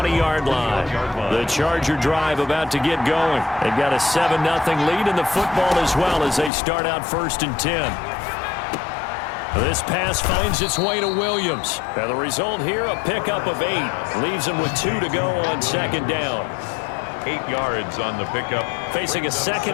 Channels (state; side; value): drops out; right; at 6.5 s